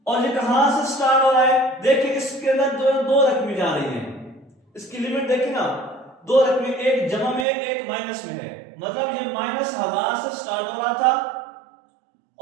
और ये कहां से स्टार्ट हो रहा है? देखिए इसके अंदर दो रकमें जा रही हैं, इसकी लिमिट देखिए ना, दो रकमें, एक जमा में एक माइनस में है, मतलब ये -1000 से स्टार्ट हो रहा था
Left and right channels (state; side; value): drops out; left; at 7.5 s